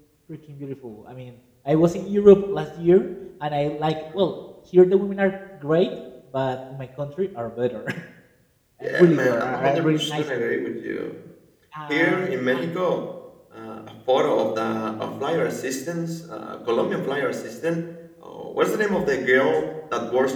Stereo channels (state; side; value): identical; both; correlation 1.00